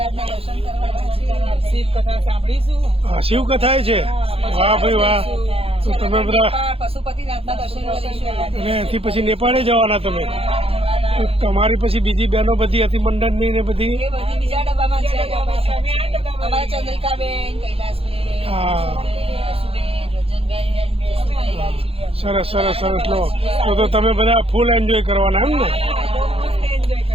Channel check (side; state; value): left; late; 0.27 ms